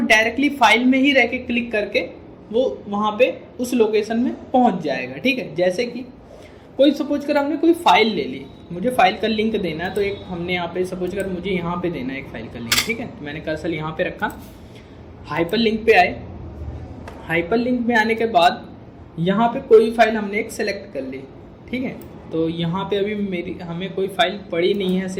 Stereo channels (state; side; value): identical; both; correlation 1.00